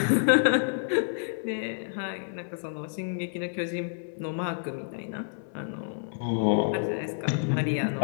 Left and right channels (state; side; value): silent; right; 59 dB below the other